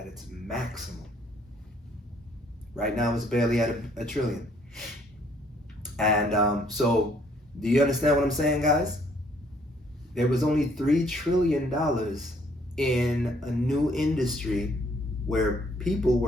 its maximum. Right now it's barely at a trillion. And so, do you understand what I'm saying, guys? There was only $3 trillion in a new industry where people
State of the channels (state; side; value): normal; both; correlation 0.64